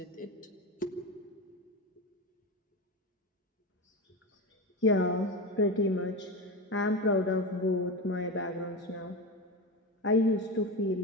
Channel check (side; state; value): both; normal; correlation 0.21